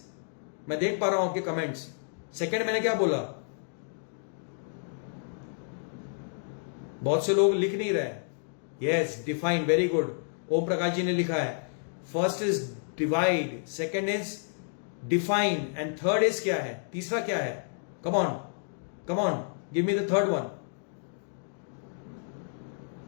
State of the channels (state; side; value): silent; right; digital silence